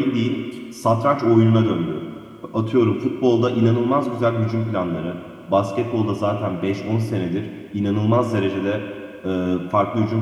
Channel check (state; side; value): identical; both; correlation 1.00